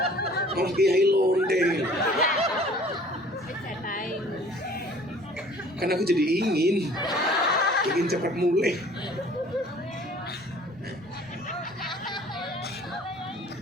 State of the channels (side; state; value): both; normal; correlation 0.51